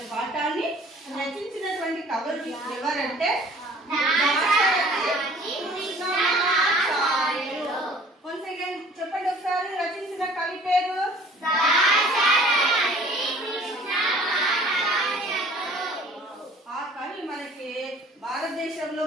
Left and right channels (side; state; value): both; normal; correlation 0.51